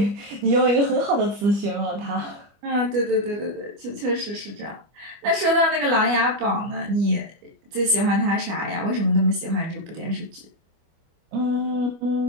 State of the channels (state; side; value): late; left; 25 ms